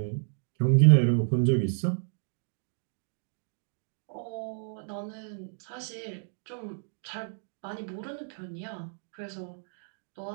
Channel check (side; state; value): left; silent; digital silence